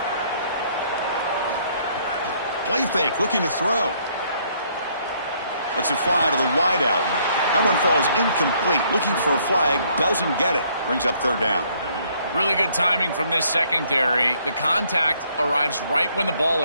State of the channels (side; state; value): both; inverted; correlation -0.66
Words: Play fake, looking to throw. Lets it fly to the wide out. That one falls incomplete. Looking for a flag, doesn't get it. Brings up third down. Really good timing from this secondary. The contact arrives right when the ball